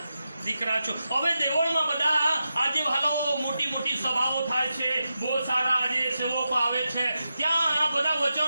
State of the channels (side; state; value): both; inverted; correlation -0.89